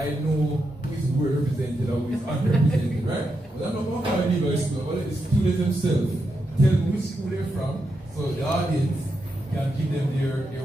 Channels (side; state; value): both; normal; correlation 0.85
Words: know who is well represented or who is underrepresented, right? But I'm not going to call anybody school, but the students themselves tell them which school they're from, so the audience can give them their